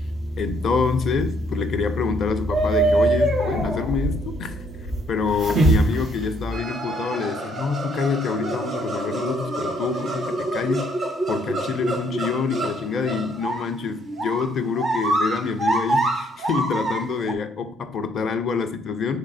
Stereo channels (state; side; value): normal; both; correlation 0.68